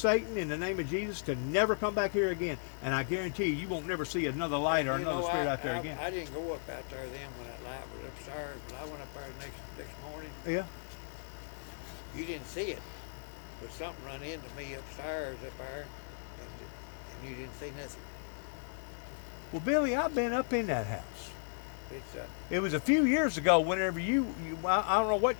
in the name of Jesus, to never come back here again. And I guarantee you won't never see another light or You another know, spirit out there I, again. I didn't go up out there then when that light was upstairs, but I went up there this morning. Yeah. You didn't see it, but something run into me upstairs up there, and you didn't see nothing. Well, Billy, I've been up in that house. It's It was a few years ago whenever I don't know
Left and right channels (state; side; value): silent; right; 54 dB below the other